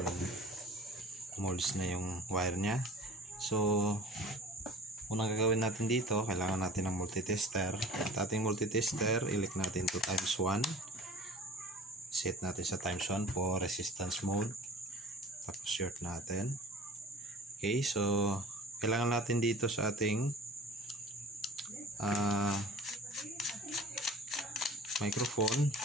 molds na yung wire niya. So unang gagawin natin dito, kailangan natin ng multitester. At ating multitester, i-click natin to ×1. Set natin sa ×1 for resistance mode. Tapos short natin. Okay, so kailangan natin dito sa ating microphone.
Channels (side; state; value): both; normal; correlation 0.44